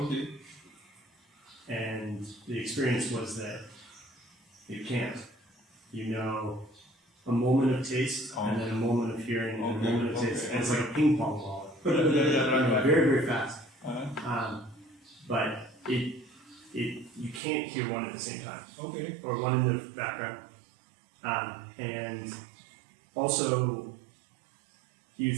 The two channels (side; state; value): left; drops out; at 17.4 s